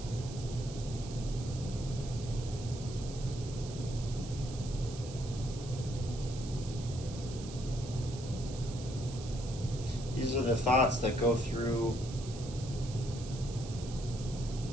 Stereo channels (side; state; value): right; noise; hiss, 14 dB below the sound